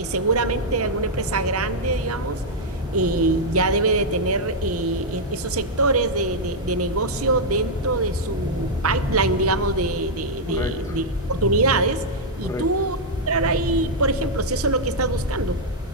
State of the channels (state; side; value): normal; both; correlation -0.04